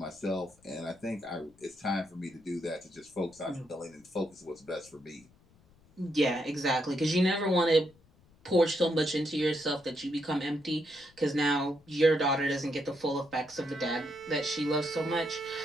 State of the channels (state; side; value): noise; left; rumble, 29 dB below the sound